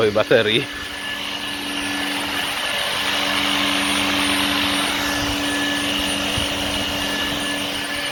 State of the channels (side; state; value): both; identical; correlation 1.00